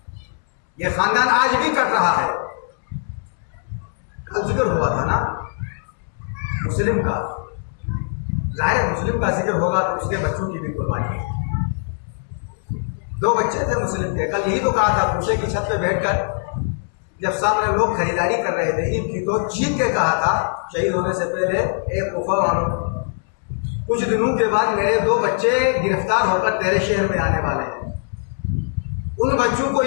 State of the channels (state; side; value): silent; right; digital silence